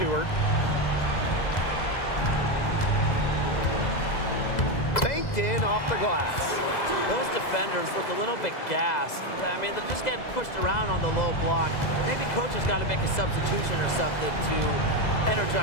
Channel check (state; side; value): late; right; 2.0 ms